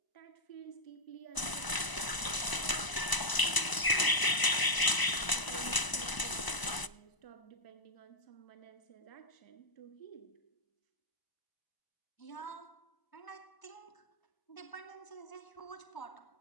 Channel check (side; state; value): right; late; 1.0 ms